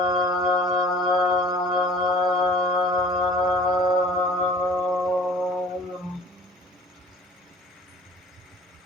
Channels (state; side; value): normal; both; correlation 0.48